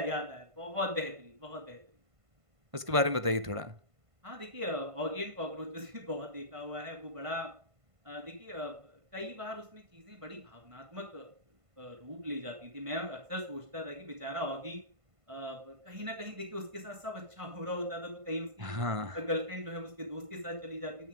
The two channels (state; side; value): late; left; 1.5 ms